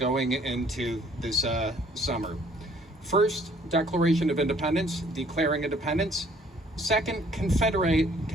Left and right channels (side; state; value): both; normal; correlation 0.60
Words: into this summer. First, Declaration of Independence, declaring independence. Second,